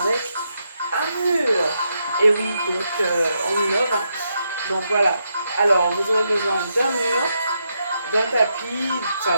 un mur. Et oui, donc on innove, hein. Donc voilà. Alors vous aurez besoin d'un mur, d'un tapis, d'une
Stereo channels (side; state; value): both; inverted; correlation -0.81